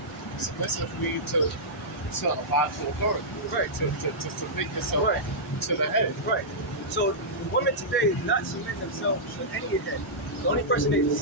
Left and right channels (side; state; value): both; normal; correlation -0.12